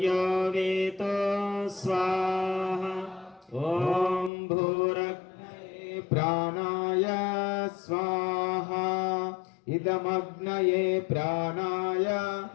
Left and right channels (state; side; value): drops out; right; at 4.3 s